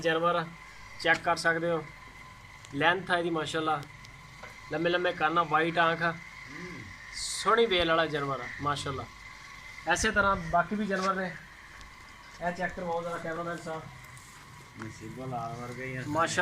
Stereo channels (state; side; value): identical; both; correlation 1.00